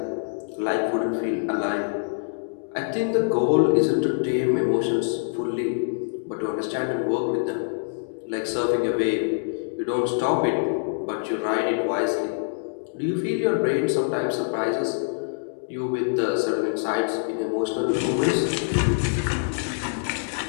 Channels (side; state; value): right; silent; digital silence